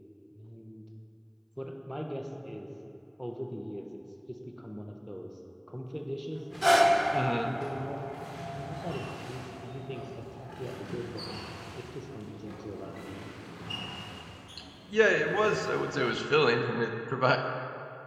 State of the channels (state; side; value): identical; both; correlation 1.00